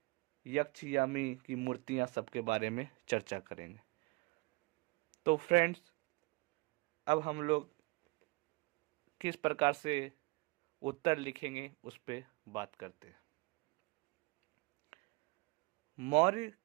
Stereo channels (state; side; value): quieter; left; 25.2 dB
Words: यक्ष यामी की मूर्तियां सबके बारे में चर्चा करेंगे। तो फ्रेंड्स, अब हम लोग किस प्रकार से उत्तर लिखेंगे उस पर बात करते हैं। मौर्य